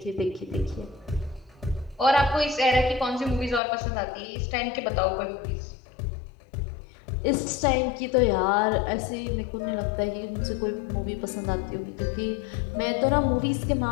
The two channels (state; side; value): drops out; right; at 3.6 s